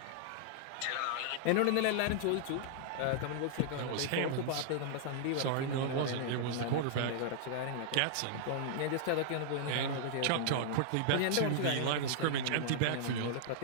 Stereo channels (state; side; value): different; both; correlation -0.01